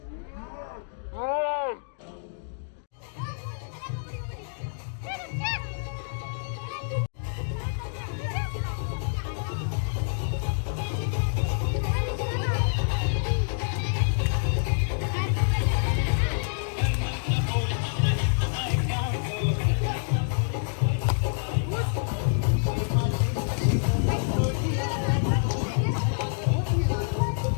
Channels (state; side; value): silent; right; digital silence